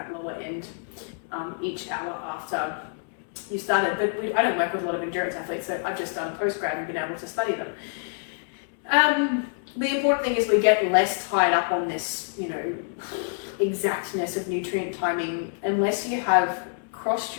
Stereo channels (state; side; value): silent; right; 60 dB below the other